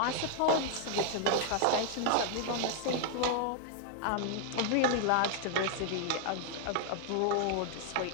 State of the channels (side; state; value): both; different; correlation 0.00